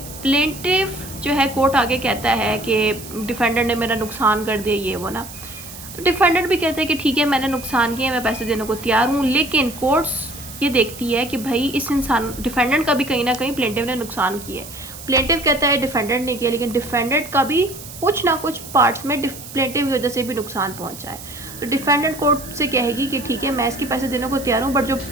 प्लेंटिव जो है कोर्ट आगे कहता है कि डिफेंडेंट ने मेरा नुकसान कर दिया ये वो ना, तो डिफेंडेंट भी कहते हैं कि ठीक है मैंने नुकसान किया, मैं पैसे देने को तैयार हूँ, लेकिन कोर्ट्स ये देखती है कि भाई इस इंसान डिफेंडेंट का भी कहीं ना कहीं प्लेंटिव ने नुकसान किया है. प्लेंटिव कहता है डिफेंडेंट ने किया, लेकिन डिफेंडेंट का भी कुछ ना कुछ पार्ट्स में प्लेंटिव की वजह से भी नुकसान पहुंचा है. तो डिफेंडेंट कोर्ट से कहेगी कि ठीक है मैं इसके पैसे देने को तैयार हूँ, बट जो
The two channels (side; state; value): right; noise; hiss, 14 dB below the sound